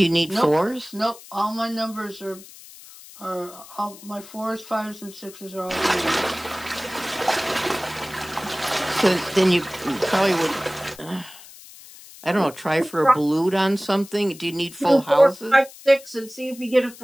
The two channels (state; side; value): noise; left; hiss, 19 dB below the sound